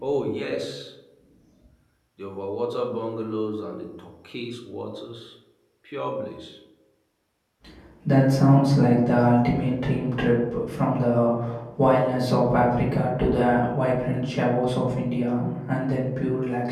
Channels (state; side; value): identical; both; correlation 1.00